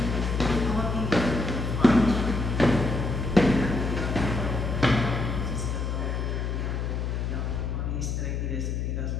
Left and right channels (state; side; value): noise; left; hum, 1 dB below the sound